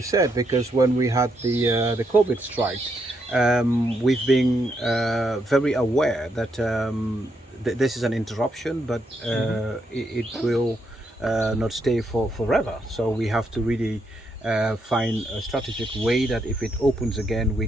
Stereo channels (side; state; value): both; normal; correlation 0.78